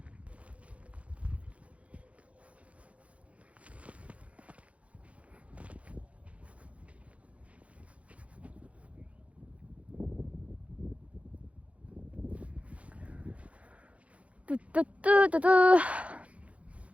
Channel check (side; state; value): left; late; 0.064 ms